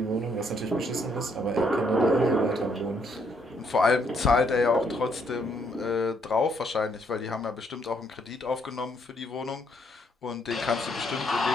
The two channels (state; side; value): normal; both; correlation 0.71